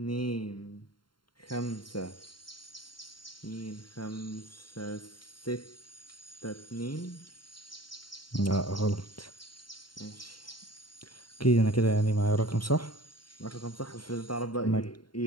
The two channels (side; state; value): right; late; 0.72 ms